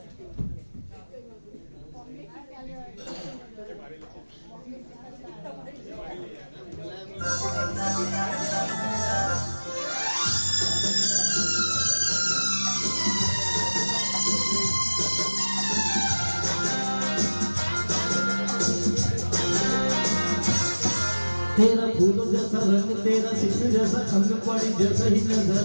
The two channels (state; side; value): inverted; both; correlation -1.00